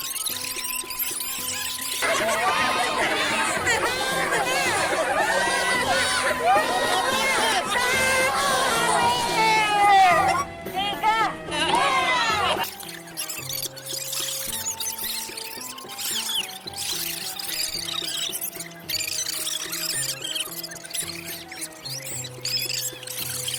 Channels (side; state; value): both; identical; correlation 1.00